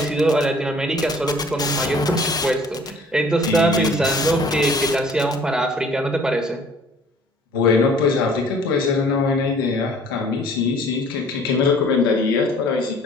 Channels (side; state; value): both; normal; correlation 0.53